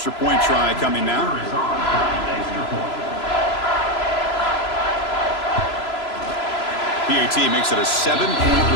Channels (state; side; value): late; right; 3.0 ms